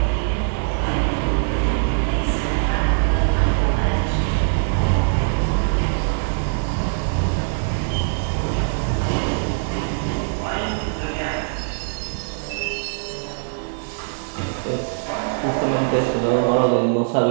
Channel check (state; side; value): silent; left; digital silence